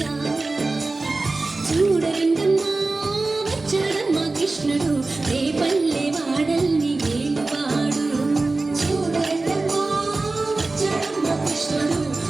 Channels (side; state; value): left; quieter; 3.4 dB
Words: చూడరండమ్మా వచ్చాడమ్మ కృష్ణుడు ఏ పల్లె వాడల్ని ఏలువాడు. చూడరండమ్మా వచ్చాడమ్మ కృష్ణుడు